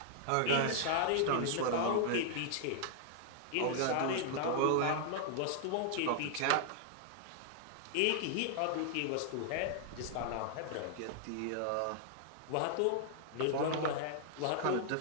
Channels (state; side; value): different; both; correlation -0.01